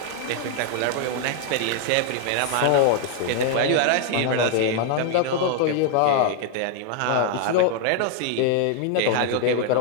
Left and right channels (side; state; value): both; different; correlation 0.00